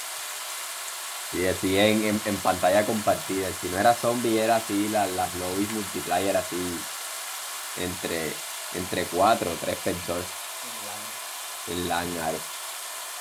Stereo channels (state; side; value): identical; both; correlation 1.00